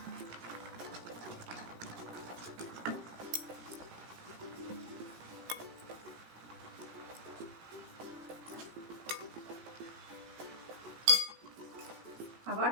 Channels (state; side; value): late; left; 17 ms